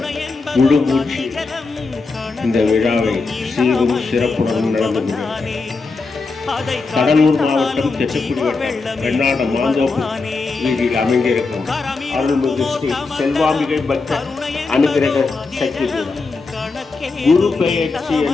முழுமூச்சு இந்த விழாவை சீரும் சிறப்புடன் நடந்து கடலூர் மாவட்டம் தெற்குடி வட்டம் வெண்ணாட மாந்தோப்பு வீதியில் அமைந்திருக்கும் அருள்மிகு ஸ்ரீ செல்வாம்பிகை பக்த அனுகிரக சக்தி குரு பெயர்ச்சி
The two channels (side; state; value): right; quieter; 4.0 dB